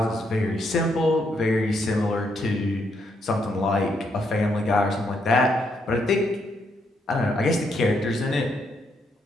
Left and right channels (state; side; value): normal; both; correlation 0.76